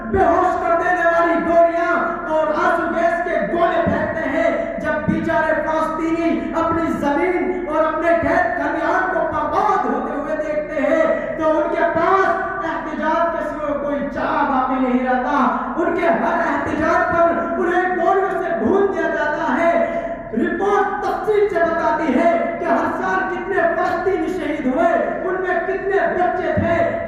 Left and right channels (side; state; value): both; identical; correlation 1.00